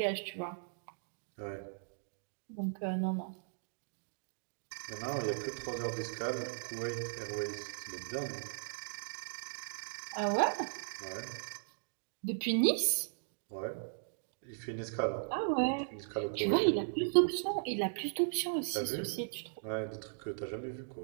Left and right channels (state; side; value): silent; left; digital silence